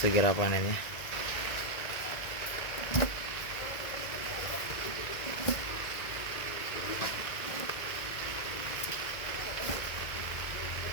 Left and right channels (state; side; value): late; right; 1.8 ms